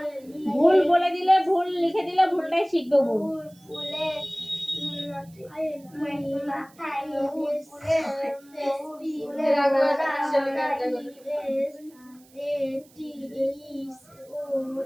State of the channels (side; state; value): right; noise; hiss, 28 dB below the sound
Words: ভুল বলে দিলে ভুল লিখে দিলে ভুলটাই শিখবে ভুল